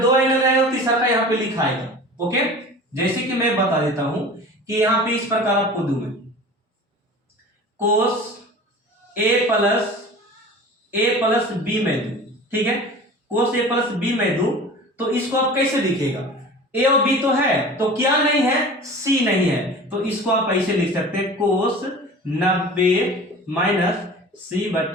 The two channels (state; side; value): normal; both; correlation 0.39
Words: दो एंगल रहेगा, तीसरा का यहाँ पे लिखा आएगा, ओके। जैसे कि मैं बता देता हूं कि यहाँ पे इस प्रकार आपको दूं मैं कोस ए प्लस बी में दूं, ठीक है, कोस ए प्लस बी में दूं, तो इसको आप कैसे लिखेगा, ए और बी तो है, तो क्या नहीं है, सी नहीं है, तो इसको आप ऐसे लिख सकते हैं कोस 90 माइनस सी